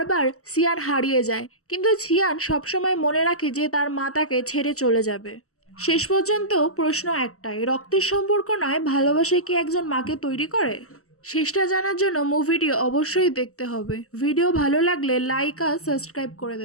সিয়ান হারিয়ে যায়, কিন্তু সিয়ান সবসময় মনে রাখে যে তার মা তাকে ছেড়ে চলে যাবে। শেষ পর্যন্ত প্রশ্ন একটাই, রক্তের সম্পর্ক নয়, ভালোবাসা কি একজন মাকে তৈরি করে? শেষটা জানার জন্য মুভিটি অবশ্যই দেখতে হবে। ভিডিও ভালো লাগলে লাইক আর সাবস্ক্রাইব করে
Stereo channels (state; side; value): late; right; 0.64 ms